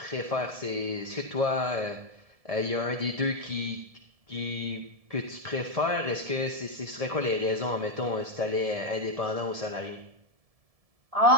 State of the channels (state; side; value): late; left; 1.7 ms